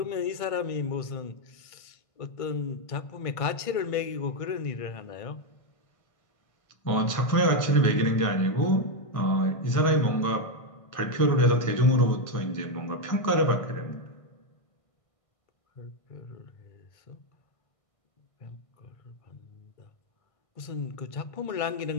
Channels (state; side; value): late; right; 1.5 ms